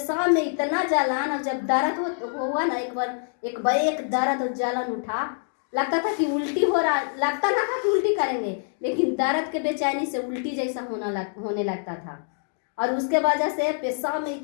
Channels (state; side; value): silent; right; digital silence